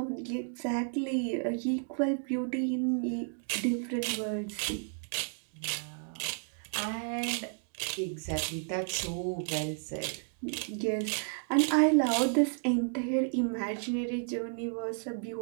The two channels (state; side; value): silent; left; 56 dB below the other